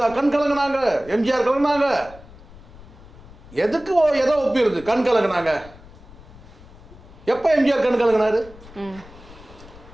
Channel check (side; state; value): left; noise; rumble, 20 dB below the sound